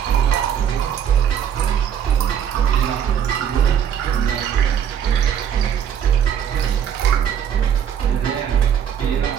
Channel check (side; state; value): left; quieter; 8.8 dB